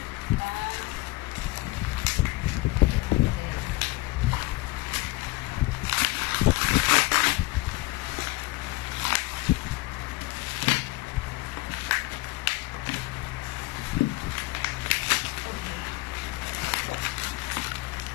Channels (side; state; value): right; quieter; 20.8 dB